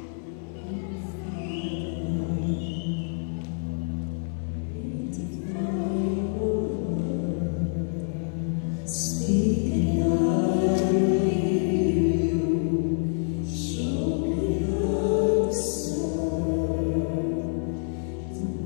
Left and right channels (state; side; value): silent; right; 60 dB below the other